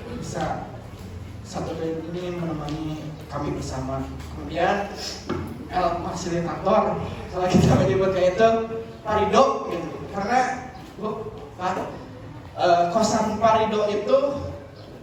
bisa 1 tahun ini menemani kami bersama. Kemudian L fasilitator, kalau kita menyebutnya itu Pak Rido gitu. Karena kosan Pak Rido itu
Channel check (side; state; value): both; identical; correlation 1.00